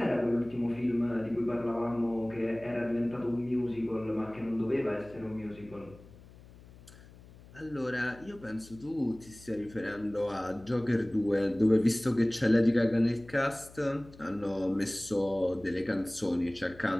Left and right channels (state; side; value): noise; left; hum, 21 dB below the sound